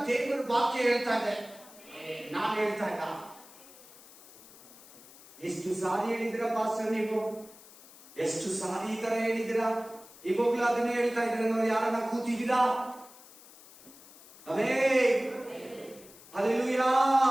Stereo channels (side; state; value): left; noise; hiss, 21 dB below the sound